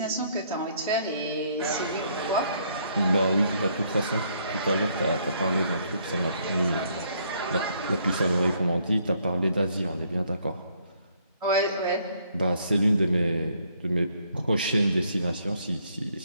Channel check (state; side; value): inverted; both; correlation -0.68